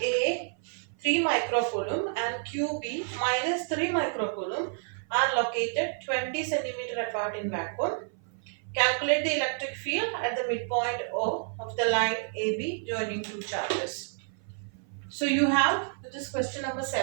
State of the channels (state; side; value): silent; left; 55 dB below the other